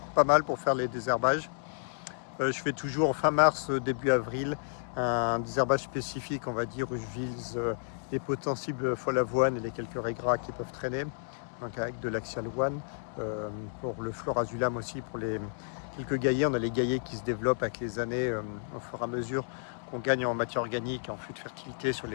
pas mal pour faire les désherbages. Je fais toujours fin mars, début avril, un désherbage spécifique, on va dire, où je vise les potentiels folle avoine et les quelques raies qui peuvent traîner, donc avec de l'axial one. Pour le florazulam aussi, pour les quelques gaillets, on a les gaillets qui se développent avec les années, au fur et à mesure qu'on gagne en matière organique et en flux de fertilité sur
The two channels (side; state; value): right; silent; 57 dB below the other